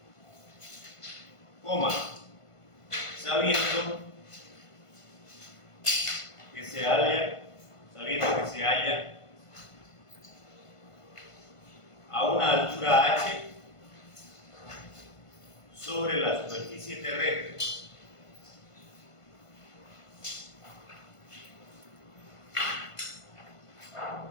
Coma, sabiendo que se halla a una altura h sobre la superficie terrestre.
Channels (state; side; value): late; right; 1.5 ms